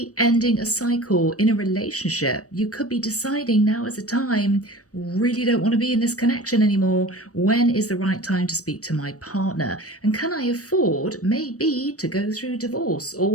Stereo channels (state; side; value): late; right; 0.66 ms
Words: ending a cycle in a relationship. You could be deciding now is a time, really don't want to be in this connection anymore. When is the right time to speak to my partner? And can I afford maybe to go through divorce